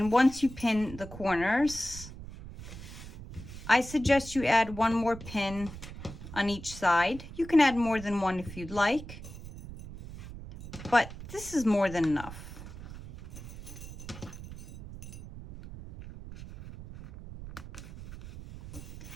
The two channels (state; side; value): noise; right; rumble, 13 dB below the sound